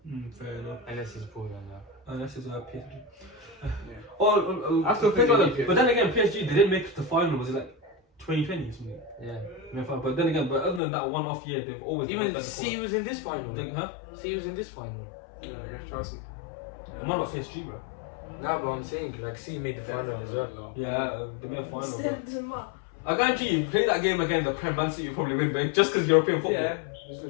Fair enough. unless it's pulled on that. Unless it's PSG. Yeah. I still think they need but then again, PSG they didn't make it to the final. Was it like 2020 or something? Yeah. But then again, but other than that one off year, they've always been Even like C was in this final. Huh? C was in this final. Yeah, against Chelsea. I'm on about PSG, bro. Nah, but I'm saying like C made the final as well. Yeah, they made a final. Bro. I guarantee you, play that game again, the Prem Man City, you probably win, but just because European football. Yeah.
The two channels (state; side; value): drops out; right; at 10.8 s